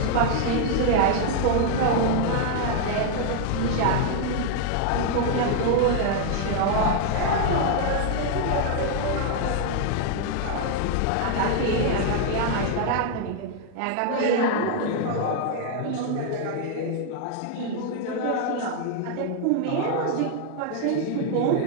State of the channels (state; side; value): different; both; correlation 0.00